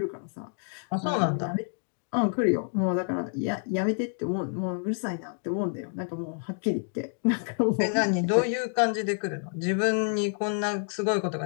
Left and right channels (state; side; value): silent; right; 59 dB below the other